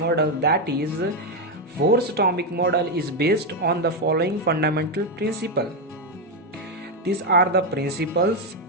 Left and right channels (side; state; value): both; normal; correlation 0.06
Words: that is Bohr's atomic model is based on the following fundamental principle. These are the principles